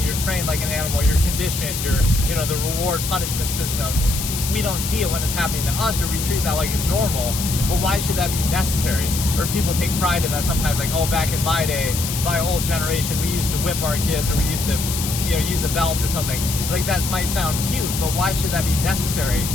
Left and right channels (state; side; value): noise; left; hiss, 4 dB below the sound